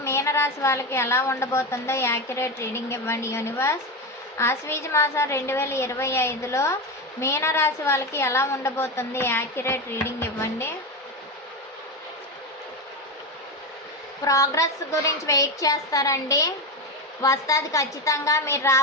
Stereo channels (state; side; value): normal; both; correlation 0.16